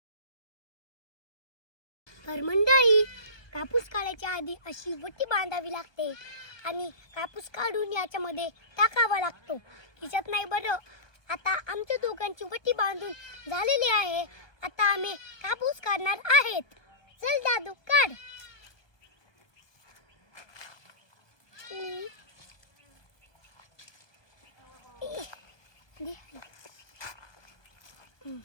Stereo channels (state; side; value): late; right; 1.2 ms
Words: तर मंडळी, कापूस काढायच्या आधी अशी वटी बांधावी लागते आणि कापूस काढून याच्यामध्ये टाकावा लागतो, खिशात नाही बरं। आता आमच्या दोघांची वटी बांधून झालेली आहे, आता आम्ही कापूस काढणार आहेत। चल दादू काढ।